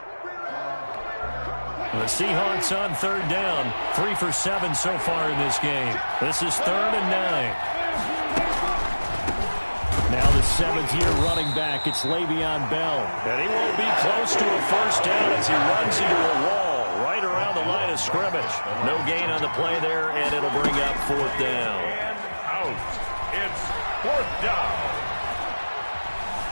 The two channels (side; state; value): both; inverted; correlation -1.00